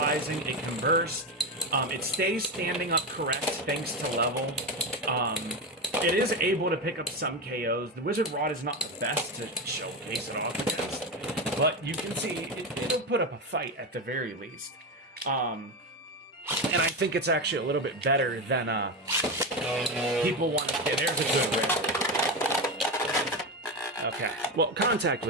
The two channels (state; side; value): normal; both; correlation 0.16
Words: It can burst. It stays standing up correct thanks to level. It is able to pick up some KOs. The Wizard Rod is not the best to showcase it off against, but you can see it'll put up a fight at the very least. And I think it's actually a little bit better than people want to get. There's a good rip. Okay, well, contact